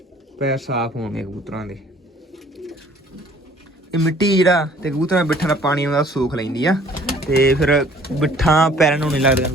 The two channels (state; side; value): normal; both; correlation 0.55